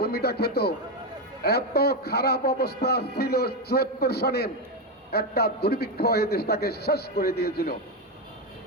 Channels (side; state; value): both; normal; correlation 0.09